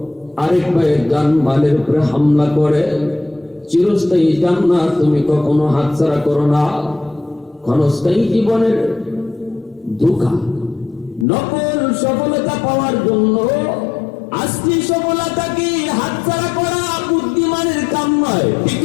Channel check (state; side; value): drops out; right; at 11.2 s